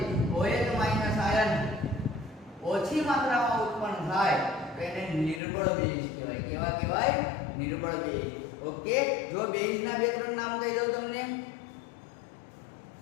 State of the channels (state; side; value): drops out; right; at 5.4 s